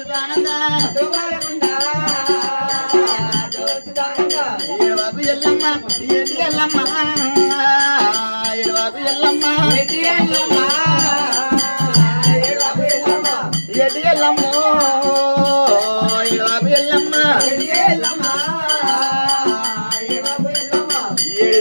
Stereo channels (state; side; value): inverted; both; correlation -1.00